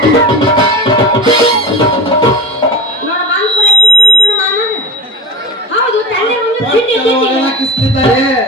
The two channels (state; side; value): normal; both; correlation 0.27